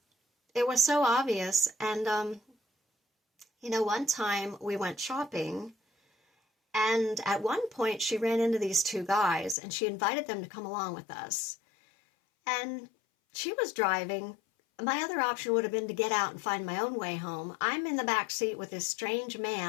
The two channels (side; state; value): right; drops out; at 9.6 s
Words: it was so obvious. And, one time we went shopping, and at one point she ran into these two guys and she invited them to come along with us. And she was driving, My other option would have been to get out and find my own way home. I'm in the back seat with this strange